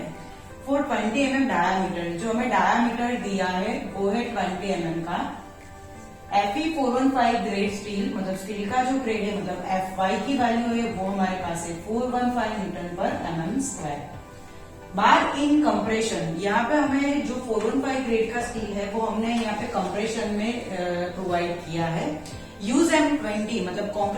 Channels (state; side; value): identical; both; correlation 1.00